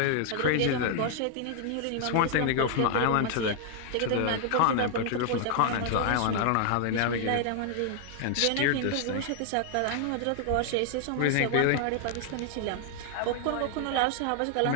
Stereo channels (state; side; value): different; both; correlation 0.00